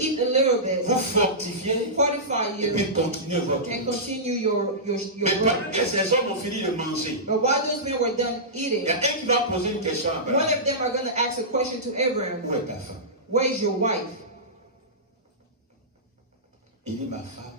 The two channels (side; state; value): both; normal; correlation -0.16